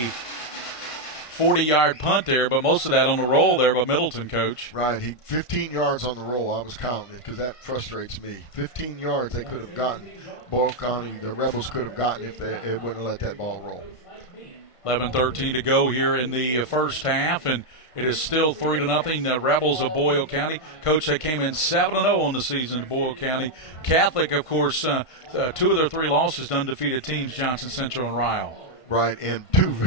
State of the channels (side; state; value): right; late; 1.5 ms